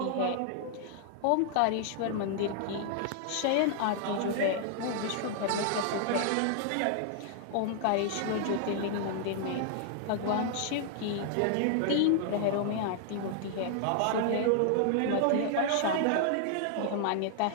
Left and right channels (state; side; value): different; both; correlation -0.01